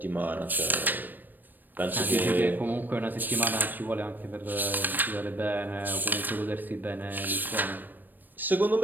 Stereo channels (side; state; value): left; late; 0.090 ms